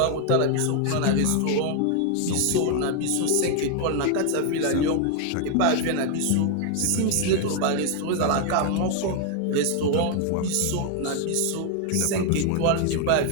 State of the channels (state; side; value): different; both; correlation 0.01